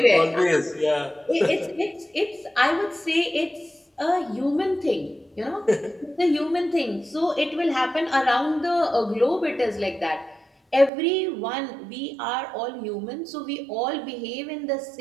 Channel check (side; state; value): left; drops out; at 10.9 s